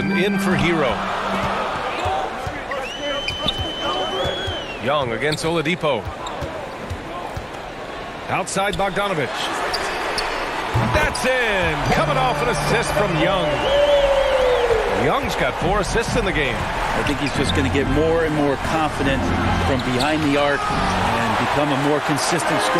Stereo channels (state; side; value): identical; both; correlation 1.00